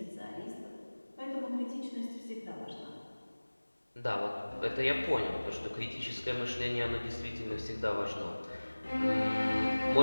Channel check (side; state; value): both; inverted; correlation -1.00